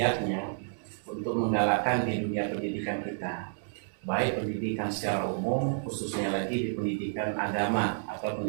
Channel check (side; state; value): left; silent; digital silence